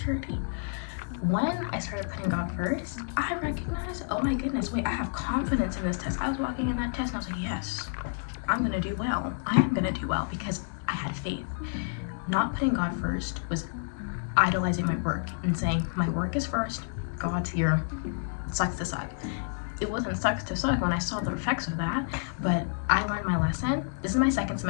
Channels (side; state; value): right; silent; digital silence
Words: When I started putting God first, I recognized, oh my goodness, wait, I have confidence in this test. I was walking in that test and I was like, yes, I'm gonna do well. I am gonna do well because I had faith. Not putting God first was idolizing my work and saying, my work is first, God's here, sucks to suck. It wasn't sucks to suck when I saw the effects of that, but I learned my lesson. This is my second